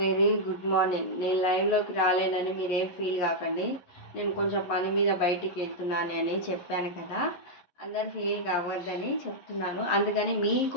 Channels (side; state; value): right; late; 11 ms